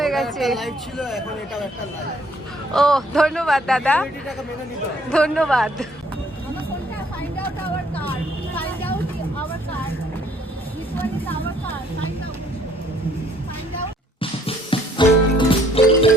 গেছে। ও ধন্যবাদ দাদা, ধন্যবাদ।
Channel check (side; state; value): both; normal; correlation 0.63